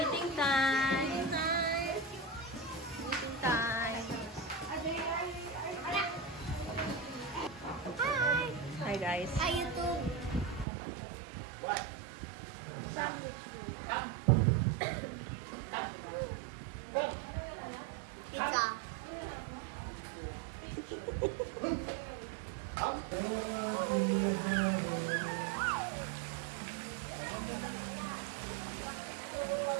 time! Eating time! Hi guys! Hi, YouTube. Pizza.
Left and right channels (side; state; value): left; drops out; at 10.7 s